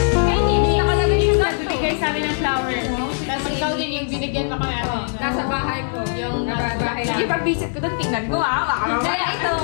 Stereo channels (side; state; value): right; silent; digital silence